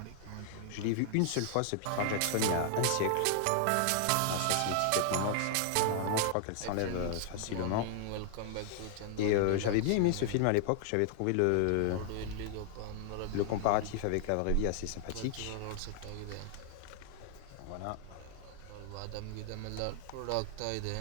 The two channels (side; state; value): both; different; correlation 0.00